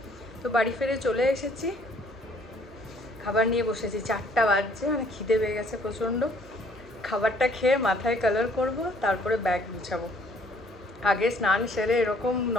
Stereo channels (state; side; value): normal; both; correlation 0.61